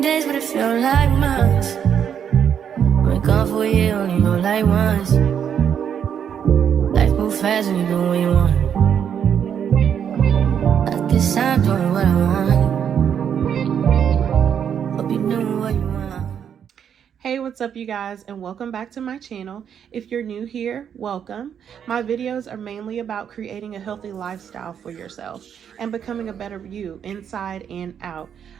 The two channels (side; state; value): left; quieter; 8.3 dB